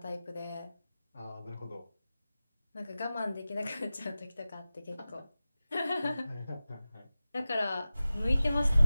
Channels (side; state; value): both; inverted; correlation -0.96